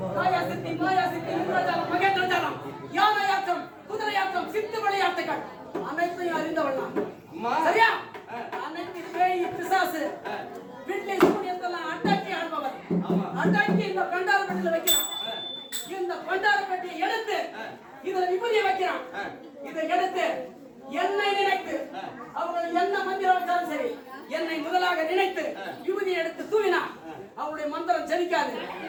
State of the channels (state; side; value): identical; both; correlation 1.00